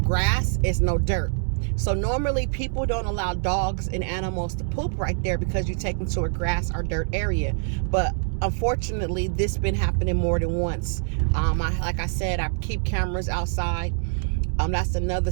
it's no dirt. So normally people don't allow dogs and animals to poop right there because you take them to a grass or dirt area. But unfortunately, this been happening more than once. Like I said, I keep cameras outside. That's another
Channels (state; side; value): silent; left; digital silence